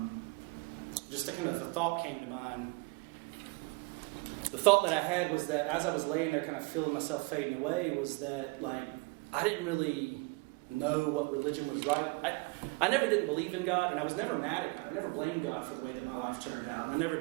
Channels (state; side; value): quieter; left; 28.1 dB